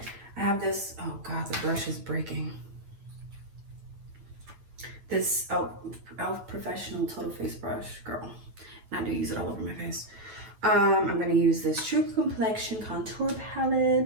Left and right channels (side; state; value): left; late; 9.2 ms